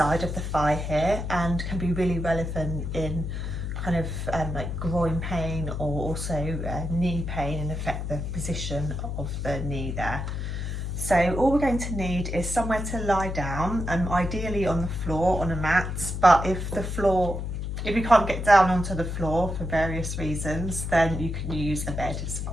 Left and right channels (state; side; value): noise; left; hum, 4 dB below the sound